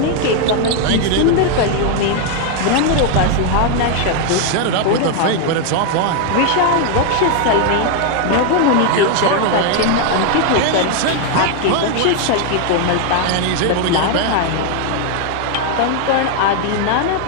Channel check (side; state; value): both; different; correlation 0.00